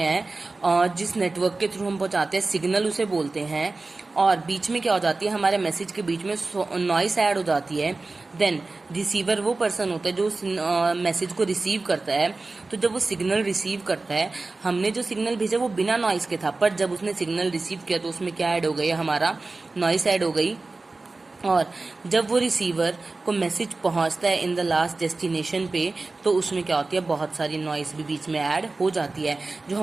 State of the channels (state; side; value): quieter; left; 3.5 dB